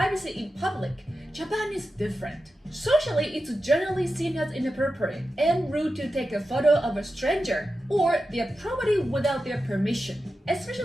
in public, Japan is different. Socially, it's generally seen as inappropriate and rude to take a photo of a stranger or their property without their permission.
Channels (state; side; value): normal; both; correlation 0.91